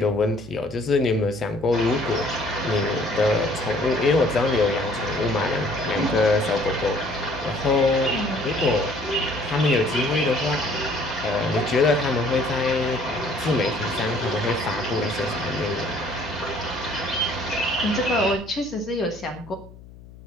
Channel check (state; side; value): noise; left; hum, 19 dB below the sound